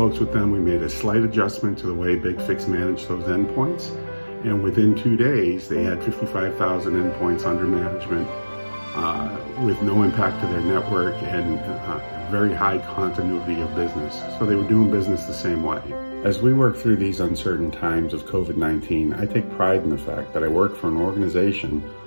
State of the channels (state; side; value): inverted; both; correlation -1.00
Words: with them. We made a slight adjustment to the way BigFix managed those endpoints. And within 2 days, they had 55,000 endpoints under management with no impact to their network and very high continuity of business. So they were doing business the same way. As we work through these uncertain times of COVID-19, I take pride in the fact that I work for an organization